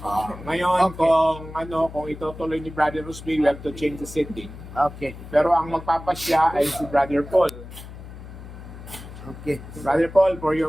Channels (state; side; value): noise; left; hum, 14 dB below the sound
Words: Ngayon, kung itutuloy ni Brother Rusby, we have to change the setting. Okay. Pero ang magpapasya ay si Brother Paul. Okay. Brother Paul, for your